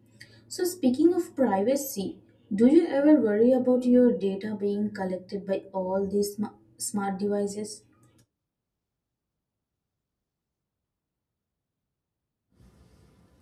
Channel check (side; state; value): both; identical; correlation 1.00